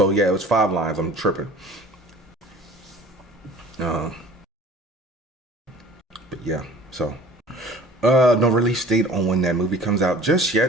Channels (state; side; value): normal; both; correlation 0.47